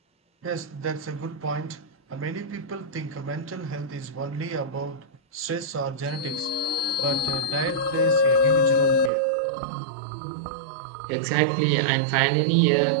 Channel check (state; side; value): drops out; left; at 9.1 s